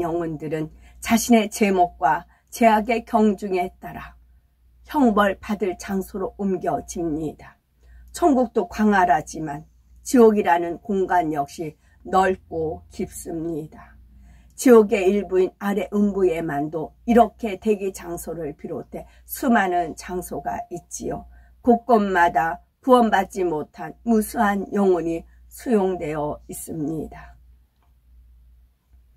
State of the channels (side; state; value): both; identical; correlation 1.00